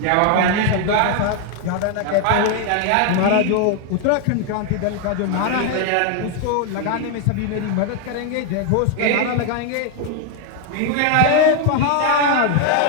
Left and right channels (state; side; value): different; both; correlation 0.01